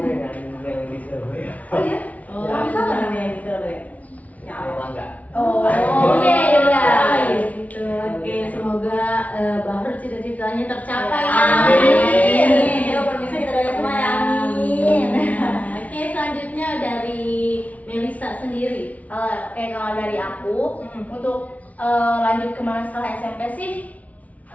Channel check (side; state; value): right; late; 0.070 ms